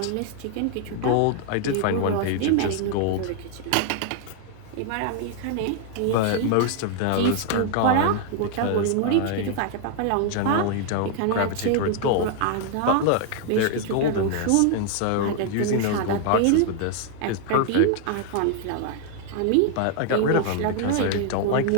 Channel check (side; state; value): both; different; correlation 0.00